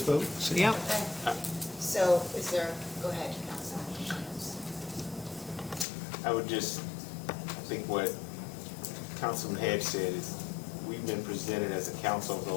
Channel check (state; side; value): drops out; right; at 5.9 s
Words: vote, see? yep. Okay. So is there, go ahead, Councilman. I would just, I think what Councilman Hedge said is, we've been presented as a council over